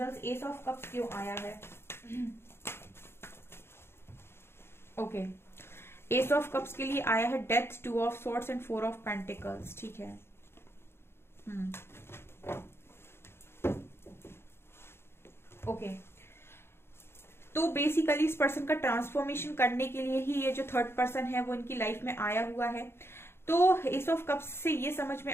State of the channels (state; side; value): late; right; 0.12 ms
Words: एस ऑफ कप्स क्यों आया है। ओके, एस ऑफ कप्स के लिए आया है death, 2 of swords and 4 of pentacles, ठीक है। ओके, तो बेसिकली इस पर्सन का ट्रांसफॉर्मेशन करने के लिए ही ये जो थर्ड पर्सन है वो इनकी लाइफ में आया हुआ है। तो एस ऑफ कप्स से ये समझ में